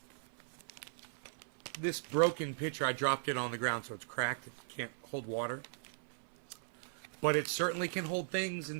this broken pitcher, I dropped it on the ground, so it's cracked. It can't hold water. But it certainly can hold things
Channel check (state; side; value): silent; left; 52 dB below the other